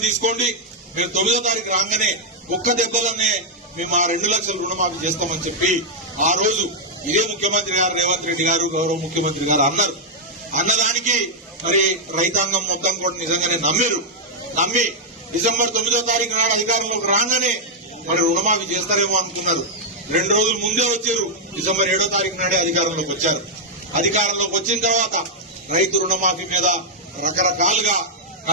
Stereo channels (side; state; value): both; normal; correlation -0.04